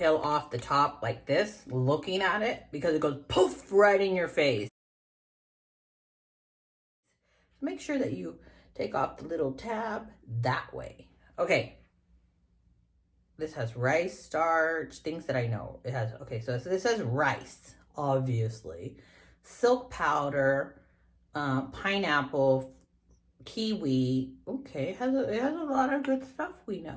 off the top like this, looking at it, because it goes poof right in your face. Make sure that you take off the little tab that way. Okay. This has rice starch, things that I know. It has, okay, so this says rice, obviously. Silk powder, pineapple, kiwi. Okay, it has a lot of good stuff we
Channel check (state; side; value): identical; both; correlation 1.00